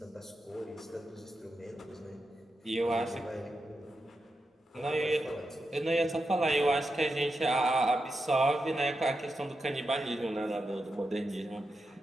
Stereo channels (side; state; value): both; normal; correlation 0.88